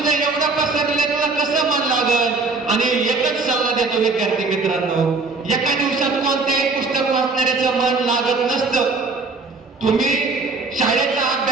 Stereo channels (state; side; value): quieter; left; 3.9 dB